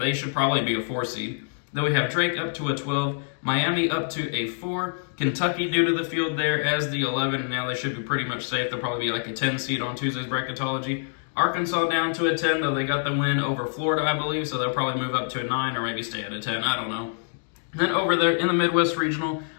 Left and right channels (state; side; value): silent; right; digital silence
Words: should probably be a 4 seed. Then we have Drake up to a 12, Miami up to a 4, Kentucky due to the field there as the 11, and now they should be pretty much safe. They'll probably be like a 10 seed on Tuesday's bracketology. Arkansas down to a 10, though they got the win over Florida, I believe, so they'll probably move up to a 9 or maybe stay at a 10, I don't know. Then over there in the Midwest Regional,